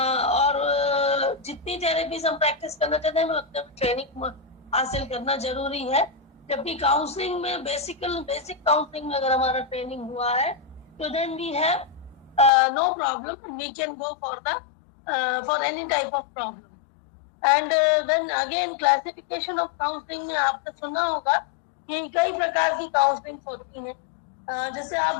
जितनी थेरेपीज हम प्रैक्टिस करना चाहते हैं उतने ट्रेनिंग हासिल करना जरूरी है। जबकि काउंसलिंग में बेसिक काउंसलिंग में अगर हमारा ट्रेनिंग हुआ है तो then we have no problem, we can go for any type of problem. And then again classification of counselling में आपने सुना होगा कि कई प्रकार की काउंसलिंग होती है। जैसे आप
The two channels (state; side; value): drops out; right; at 12.5 s